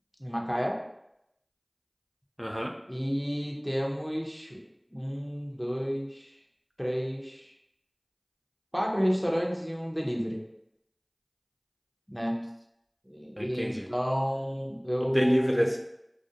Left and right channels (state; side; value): identical; both; correlation 1.00